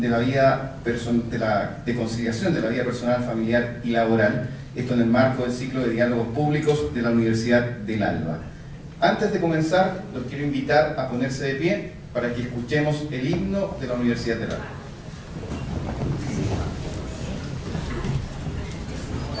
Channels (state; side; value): identical; both; correlation 1.00